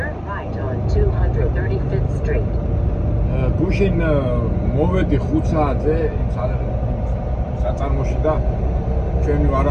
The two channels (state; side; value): identical; both; correlation 1.00